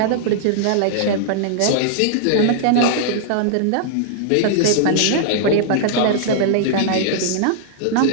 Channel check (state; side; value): different; both; correlation -0.01